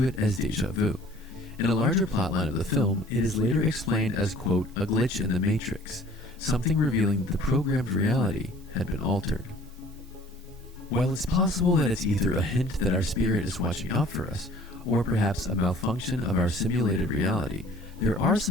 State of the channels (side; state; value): both; normal; correlation 0.51